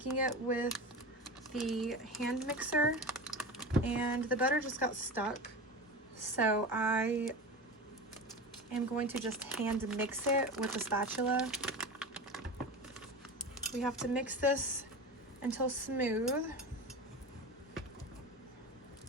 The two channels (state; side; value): normal; both; correlation 0.28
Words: it with the hand mixer and the butter just got stuck. So I am going to just hand mix it with a spatula. We have to mix this until smooth.